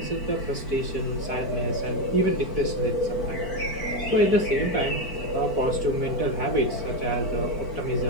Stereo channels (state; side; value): late; right; 4.5 ms